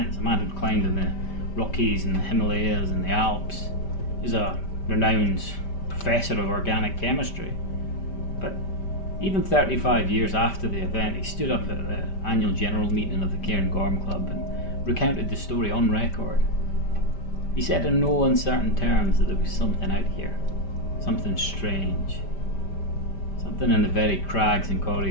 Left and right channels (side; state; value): right; late; 5.1 ms